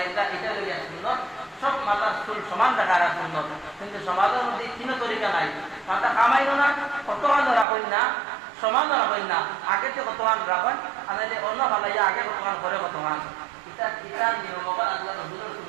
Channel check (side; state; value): left; drops out; at 7.7 s